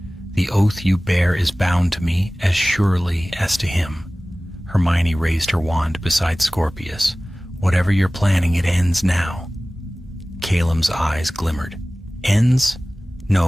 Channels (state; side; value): normal; both; correlation 0.98